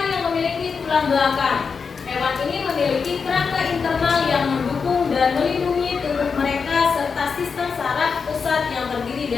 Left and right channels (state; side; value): quieter; right; 5.5 dB